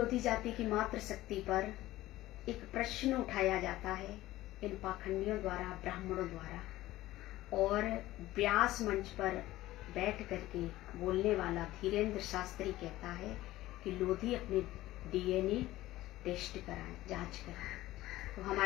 जाति की मातृशक्ति पर एक प्रश्न उठाया जाता है इन पाखंडियों द्वारा, ब्राह्मणों द्वारा। और व्यास मंच पर बैठ करके बोलने वाला धीरेन्द्र शास्त्री कहता है कि लोधी अपने डीएनए टेस्ट कराएं, जांच कराएं। तो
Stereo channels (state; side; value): quieter; right; 16.4 dB